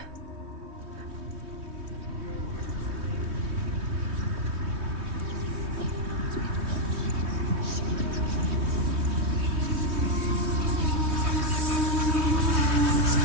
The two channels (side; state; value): left; late; 3.2 ms